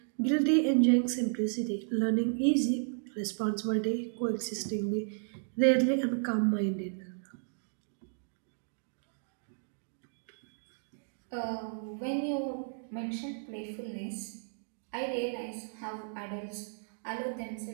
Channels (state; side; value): silent; left; digital silence